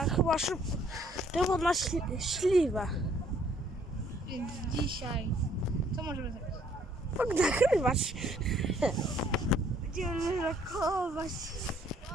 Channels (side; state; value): both; normal; correlation 0.63